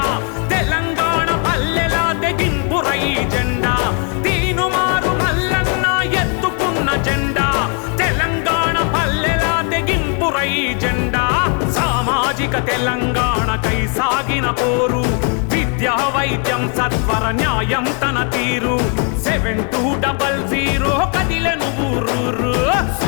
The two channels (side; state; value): right; quieter; 38.1 dB